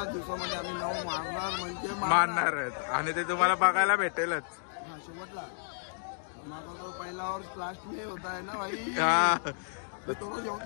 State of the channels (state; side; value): silent; right; digital silence